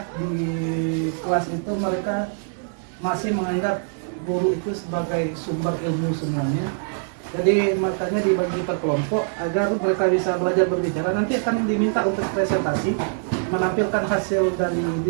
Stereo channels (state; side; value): silent; left; digital silence